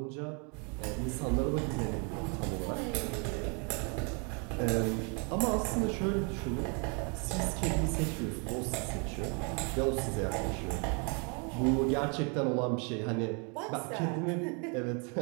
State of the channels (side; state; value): left; quieter; 35.4 dB